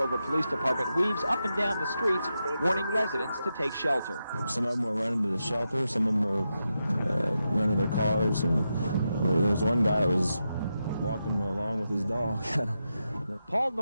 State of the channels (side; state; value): both; inverted; correlation -0.87